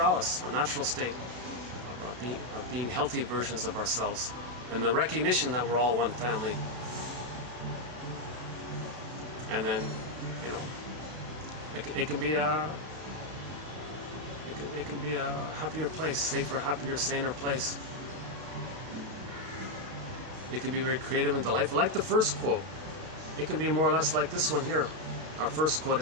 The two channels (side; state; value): left; late; 33 ms